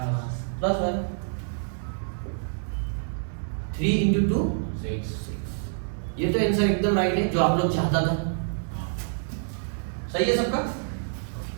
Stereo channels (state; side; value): silent; left; digital silence